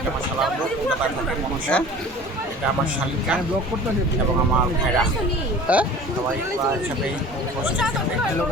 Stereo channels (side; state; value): both; normal; correlation 0.43